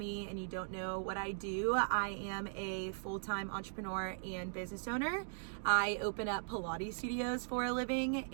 and you don't know what I do, I am a full-time entrepreneur and business owner. I open up Pilates studios for a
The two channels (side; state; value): left; silent; digital silence